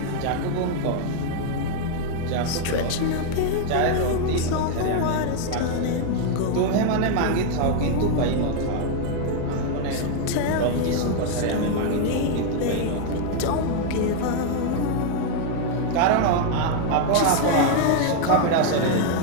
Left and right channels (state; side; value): different; both; correlation 0.00